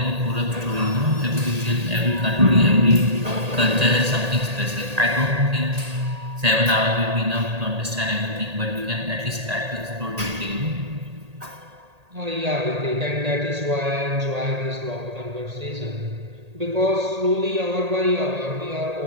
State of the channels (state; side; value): late; left; 1.8 ms